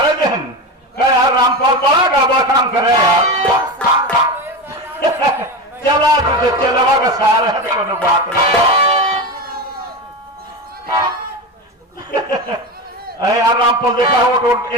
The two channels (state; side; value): normal; both; correlation 0.21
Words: देन का यार। रामपाल बड़ा गड़बड़ काम करे यार। चला तुझे चलवा का सहारा है तो कोनो बात नहीं। अरे यार रामपाल देखा हो तो